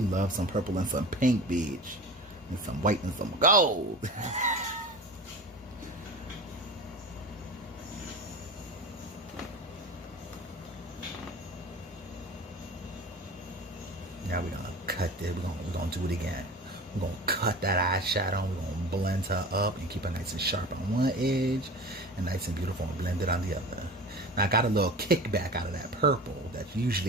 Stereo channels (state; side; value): normal; both; correlation 0.35